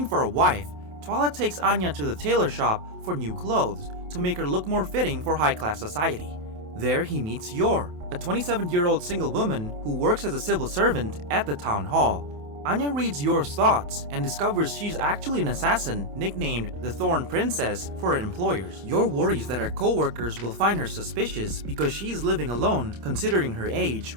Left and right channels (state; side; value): late; left; 28 ms